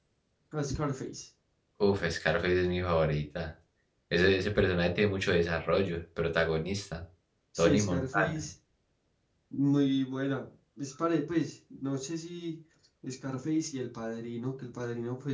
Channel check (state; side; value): identical; both; correlation 1.00